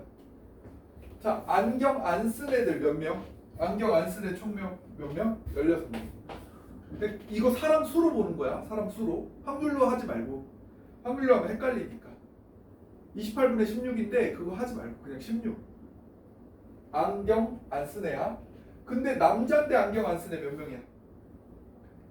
자, 안경 안 쓴 애들 몇 명? 안경 안 쓴 애 총 몇 명? 16명. 근데 이거 사람 수로 보는 거야. 사람 수로. 확률로 하지 말고. 확률로 하면 헷갈리니까. 28분의 16인데 그거 하지 말고 그냥 16. 안경 안 쓴 애야. 근데 남자인데 안경 안 쓴 애 몇 명이야?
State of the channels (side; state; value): both; identical; correlation 1.00